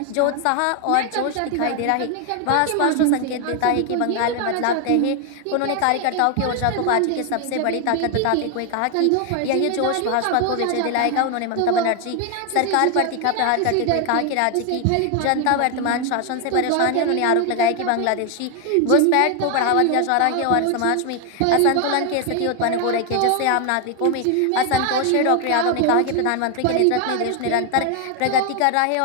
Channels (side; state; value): both; different; correlation 0.01